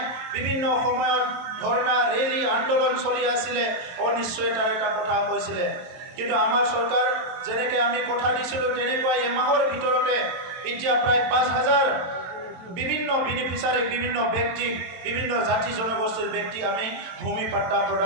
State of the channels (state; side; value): late; left; 22 ms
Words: বিভিন্ন সময়ত ধৰ্ণা, ৰেলী, আন্দোলন চলি আছিলে, অনিশ্চয়তাৰ এটা কথা কৈছিলে। কিন্তু আমাৰ চৰকাৰ যেনেকৈ আমি কথা দিছিলোঁ, তেনেকুৱাই এমাহৰ ভিতৰতে এতিয়া প্ৰায় 5000 বিভিন্ন বেনিফিচাৰী, বিভিন্ন ব্যক্তিক, বিভিন্ন জাতি জনগোষ্ঠীৰ ব্যক্তি আমি ভূমি পাট্টা